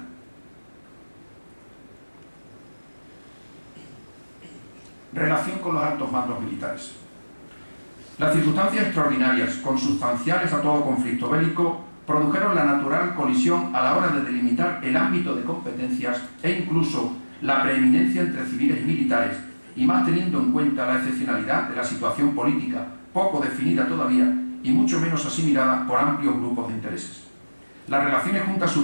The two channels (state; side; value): inverted; both; correlation -1.00